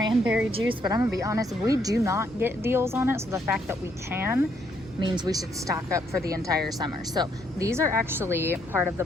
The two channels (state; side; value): normal; both; correlation 0.72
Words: juice, but I'm gonna be honest, we do not get deals on it, so the fact that we can means we should stock up for the entire summer. So these are actually part of the